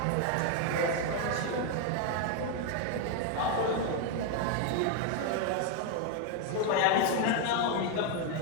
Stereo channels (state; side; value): different; both; correlation 0.01